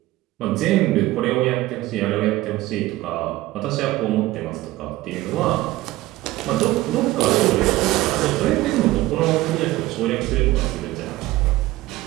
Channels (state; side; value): quieter; left; 17.3 dB